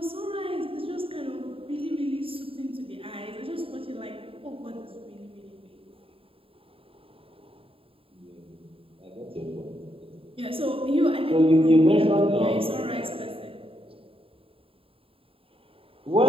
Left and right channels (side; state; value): left; late; 0.27 ms